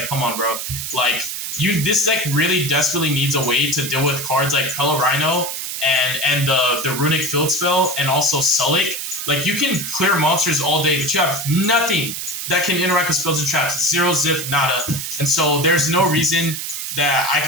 come on, bro. Like, this deck really desperately needs a way to deal with cards like Pelorino and the Runic Field Spell and also Sulik. Like, you can clear monsters all day, but you have nothing that can interact with spells and traps. Zero, zip, nada. And so there's no reason that I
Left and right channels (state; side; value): noise; right; hiss, 5 dB below the sound